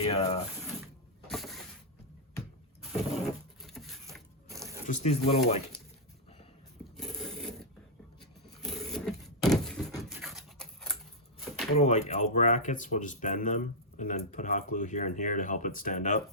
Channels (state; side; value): normal; both; correlation -0.05